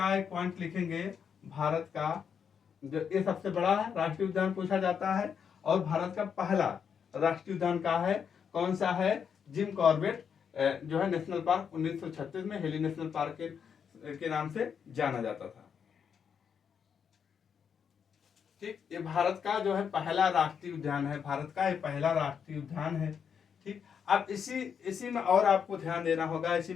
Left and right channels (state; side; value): quieter; right; 7.2 dB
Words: है, पॉइंट लिखेंगे, भारत का जो ये सबसे बड़ा राष्ट्रीय उद्यान पूछा जाता है, और भारत का पहला राष्ट्रीय उद्यान का है, कौन सा है, जिम कॉर्बेट जो है नेशनल पार्क, 1936 में हेली नेशनल पार्क के नाम से जाना जाता था। ठीक, ये भारत का जो है पहला राष्ट्रीय उद्यान है, भारत का ये पहला राष्ट्रीय उद्यान है। ठीक, अब इसी में और आपको ध्यान देना होगा, इसी